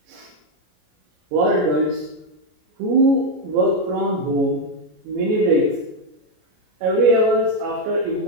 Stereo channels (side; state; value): left; late; 33 ms